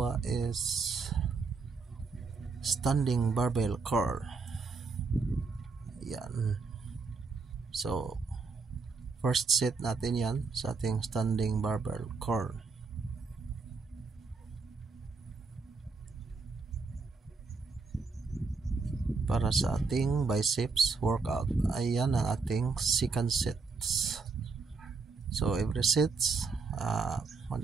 is standing barbell curl. Yan. So, first set natin yan sa ating standing barbell curl. Para sa ating biceps workout, ayan ang ating second sets. So every sets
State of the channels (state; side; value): quieter; left; 4.5 dB